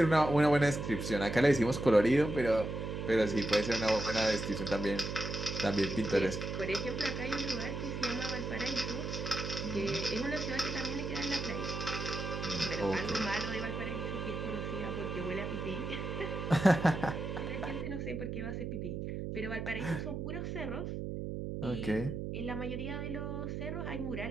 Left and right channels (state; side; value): noise; right; hum, 4 dB below the sound